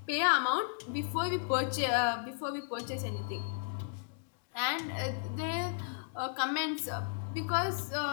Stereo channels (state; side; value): silent; right; digital silence